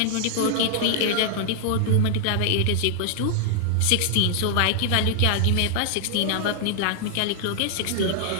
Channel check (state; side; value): different; both; correlation -0.01